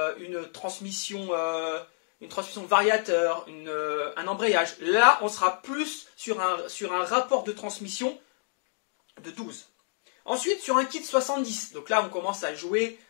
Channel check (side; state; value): right; silent; 59 dB below the other